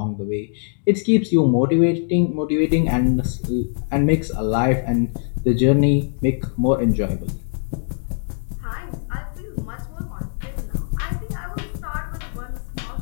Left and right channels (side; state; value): right; silent; digital silence